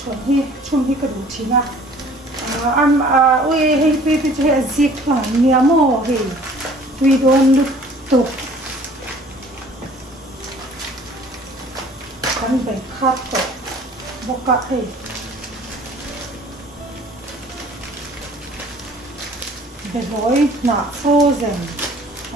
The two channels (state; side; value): normal; both; correlation 0.52